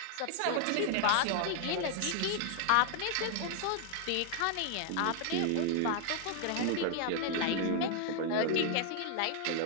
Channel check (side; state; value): both; different; correlation 0.00